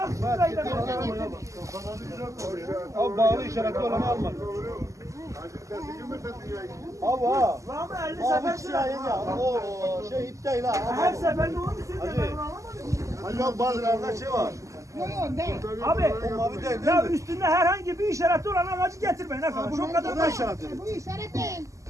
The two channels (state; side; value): late; left; 0.16 ms